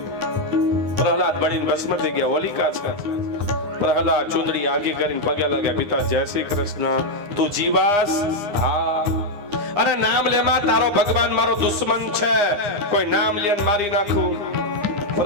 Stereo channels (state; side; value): late; left; 9.8 ms